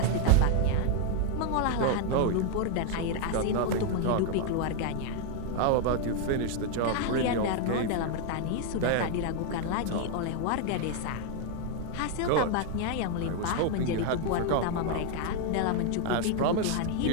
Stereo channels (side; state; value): both; different; correlation 0.00